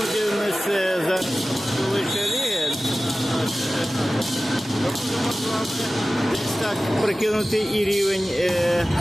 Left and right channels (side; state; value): both; normal; correlation 0.96